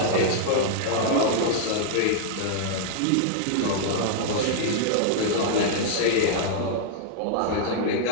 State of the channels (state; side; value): different; both; correlation -0.01